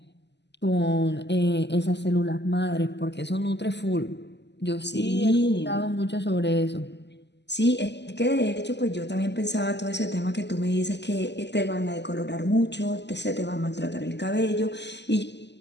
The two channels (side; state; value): right; late; 0.50 ms